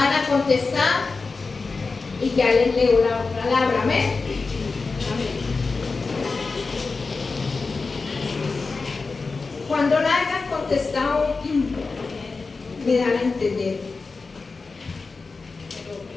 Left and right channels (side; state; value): right; quieter; 4.2 dB